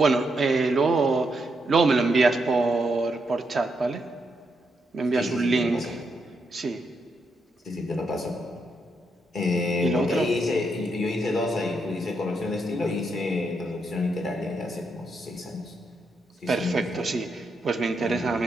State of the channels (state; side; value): normal; both; correlation 0.81